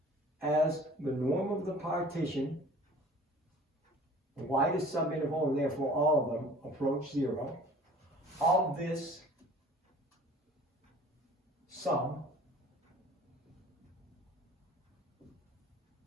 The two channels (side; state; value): both; normal; correlation 0.48